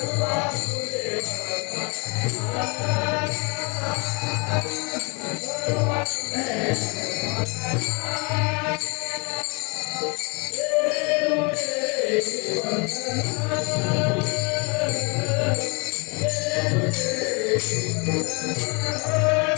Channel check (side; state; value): right; quieter; 32.0 dB